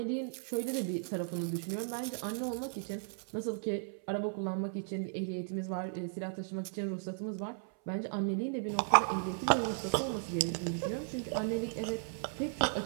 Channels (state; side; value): silent; left; 54 dB below the other